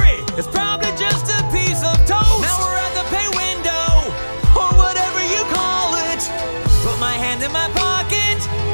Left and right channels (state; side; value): inverted; both; correlation -1.00